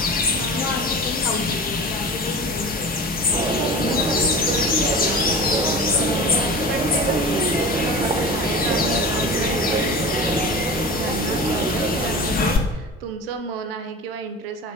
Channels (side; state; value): both; normal; correlation 0.34